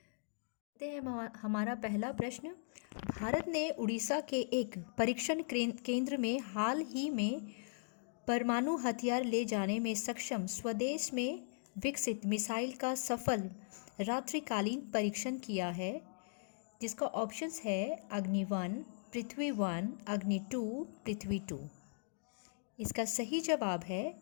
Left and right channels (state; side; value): silent; right; digital silence